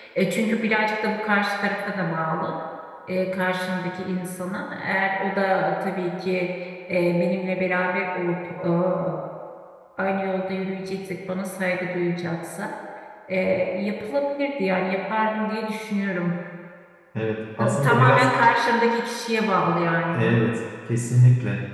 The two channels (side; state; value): both; identical; correlation 1.00